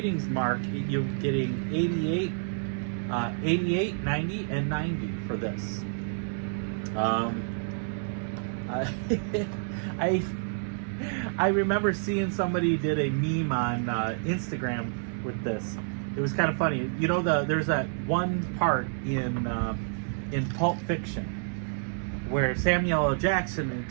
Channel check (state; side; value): silent; left; 59 dB below the other